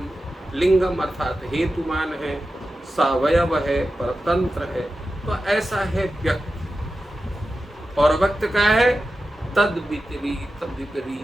लिंगम अर्थात हेतुमान है, सावयव है, परतंत्र है। तो ऐसा है व्यक्त। और व्यक्त का है तद विपरीत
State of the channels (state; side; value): normal; both; correlation 0.92